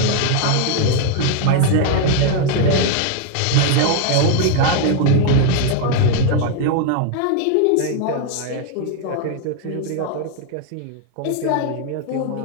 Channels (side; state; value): both; different; correlation 0.00